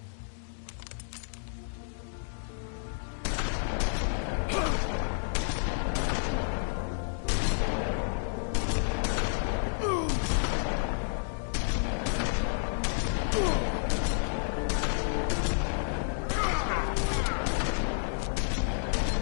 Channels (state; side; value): silent; right; digital silence